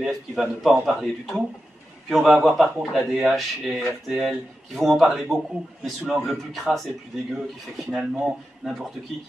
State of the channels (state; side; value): normal; both; correlation 0.90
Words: qui va ne pas en parler du tout, puis on va avoir par contre la DH et RTL qui vont en parler beaucoup, mais sous l'angle le plus crasse et le plus dégueu, qui fait que finalement, n'importe qui